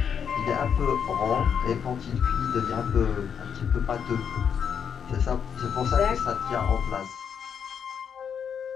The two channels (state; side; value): quieter; right; 7.5 dB